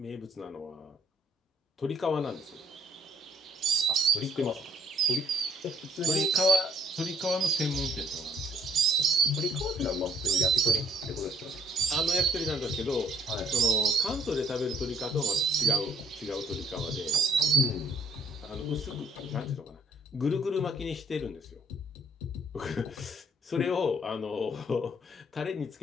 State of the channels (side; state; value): both; normal; correlation 0.63